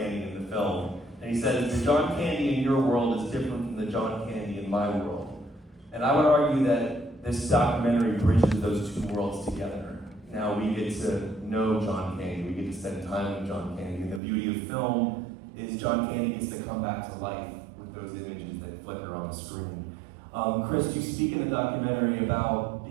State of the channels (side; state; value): left; drops out; at 14.2 s